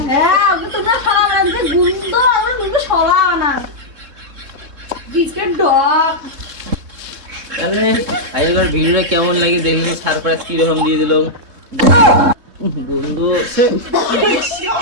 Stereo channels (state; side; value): late; left; 3.7 ms